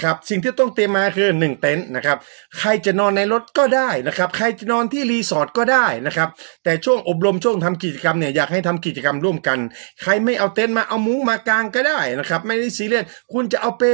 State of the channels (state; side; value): silent; left; digital silence